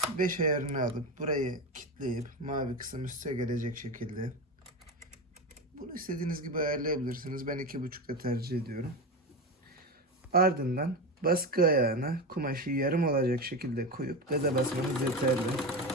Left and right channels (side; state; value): both; normal; correlation 0.20